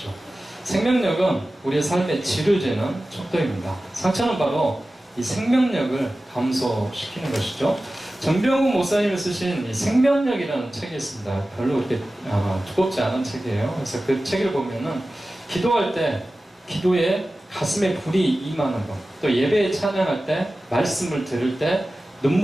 생명력은 우리의 삶의 질을 재는 척도입니다. 상처는 바로 이 생명력을 감소시키는 것이죠. 정병훈 목사님이 쓰신 이 생명력이라는 책이 있습니다. 별로 그렇게 두껍지 않은 책이에요. 그래서 그 책을 보면은 기도할 때 기도에 가슴에 불이 임하는 것, 또 예배에 찬양할 때 말씀을 들을 때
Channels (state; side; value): normal; both; correlation 0.95